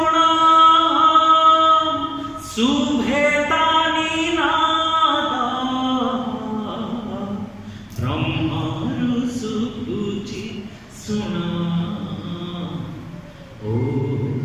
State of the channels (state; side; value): identical; both; correlation 1.00